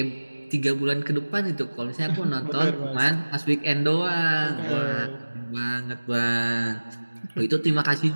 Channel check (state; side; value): inverted; both; correlation -1.00